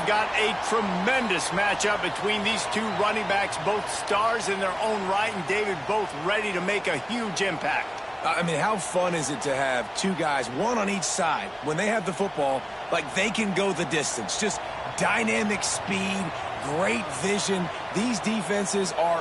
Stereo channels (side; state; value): both; identical; correlation 1.00